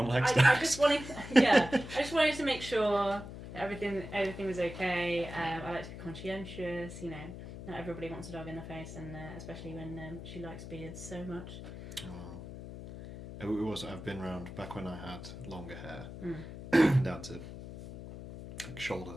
likes dogs. I just wanted to make sure that everything was okay. I like to be conscientious. You know, not everybody wants a dog in their face, and especially when she likes beards so much. Oh. It was. I've been around back when I had longer hair, down to like shoulder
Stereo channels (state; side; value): noise; left; hum, 11 dB below the sound